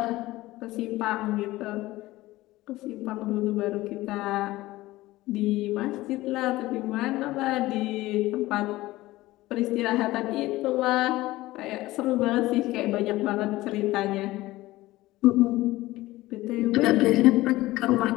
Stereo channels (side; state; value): right; quieter; 17.9 dB